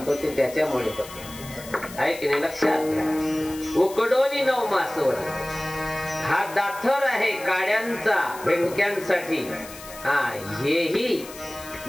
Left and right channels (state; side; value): noise; left; hiss, 16 dB below the sound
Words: ते त्याच्यामुळे होते आहे की नाही. लक्षात घ्या. उकडोनी 9 मासवर हा दाथर आहे काड्यांचा, भेंडक्यांसाठी. हेही